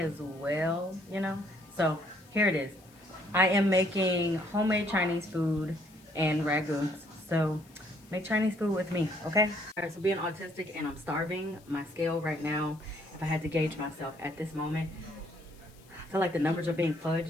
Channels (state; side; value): noise; left; hiss, 27 dB below the sound